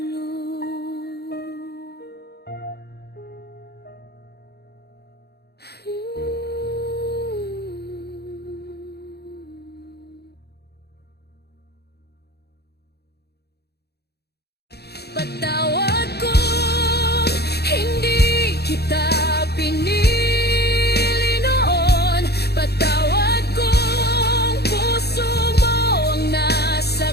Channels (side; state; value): right; late; 0.47 ms